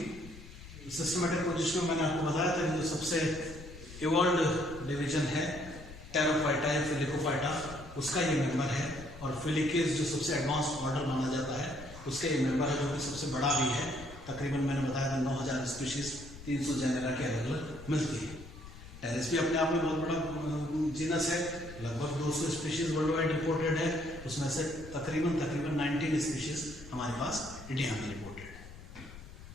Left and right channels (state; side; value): noise; left; rumble, 15 dB below the sound